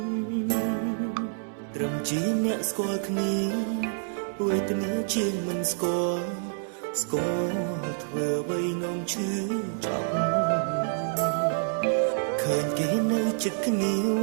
ត្រឹមជាអ្នកស្គាល់គ្នាវេទនាជាងមិនស្គាល់ធ្វើអ្វីនាំឈឺចាប់ឃើញគេនៅចិត្តគ្នាវ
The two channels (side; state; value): left; silent; 57 dB below the other